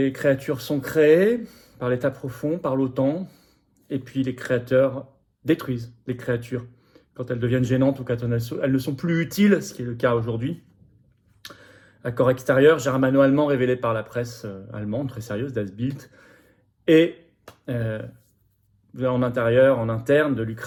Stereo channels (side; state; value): both; identical; correlation 1.00